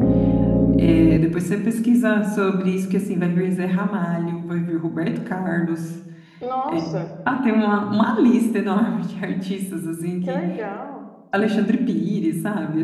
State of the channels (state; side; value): identical; both; correlation 1.00